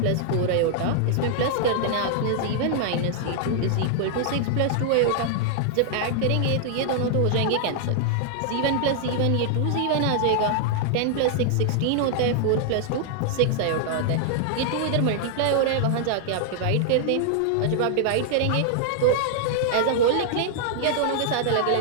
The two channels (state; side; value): different; both; correlation -0.01